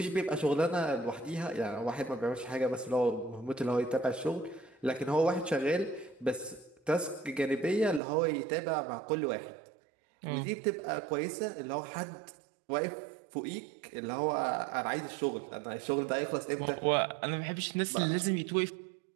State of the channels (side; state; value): left; drops out; at 8.0 s